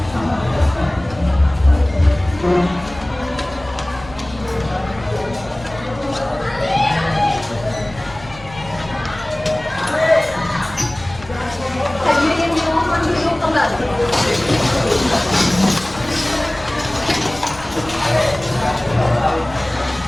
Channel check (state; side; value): noise; left; rumble, 18 dB below the sound